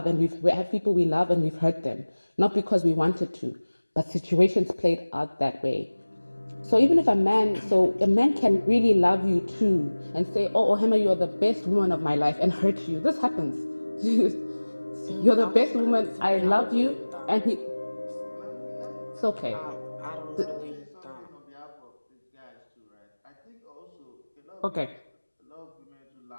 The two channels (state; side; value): inverted; both; correlation -1.00